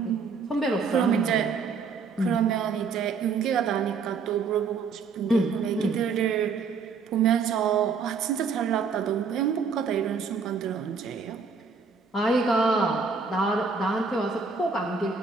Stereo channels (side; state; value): left; quieter; 5.1 dB